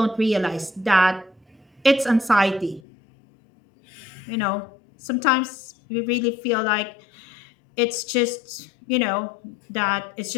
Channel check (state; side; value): drops out; right; at 2.8 s